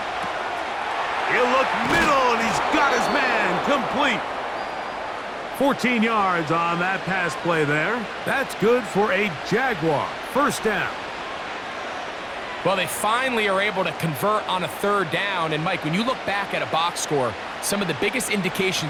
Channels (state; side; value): identical; both; correlation 1.00